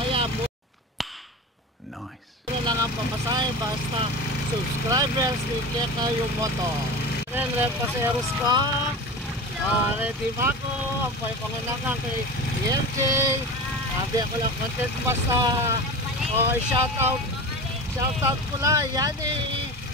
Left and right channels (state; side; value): normal; both; correlation 0.30